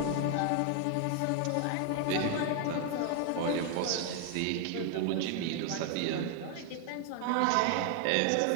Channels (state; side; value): different; both; correlation 0.00